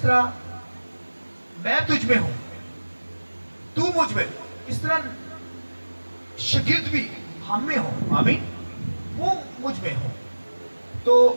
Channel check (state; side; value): inverted; both; correlation -1.00